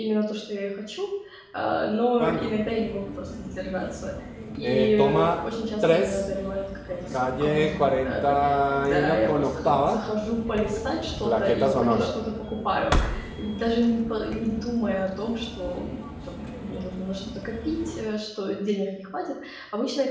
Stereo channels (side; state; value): both; identical; correlation 1.00